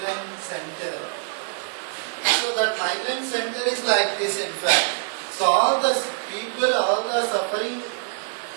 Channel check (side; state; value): left; silent; 62 dB below the other